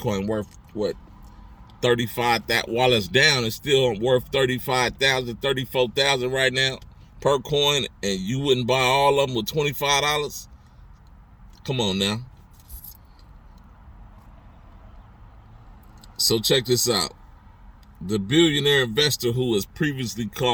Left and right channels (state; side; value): identical; both; correlation 1.00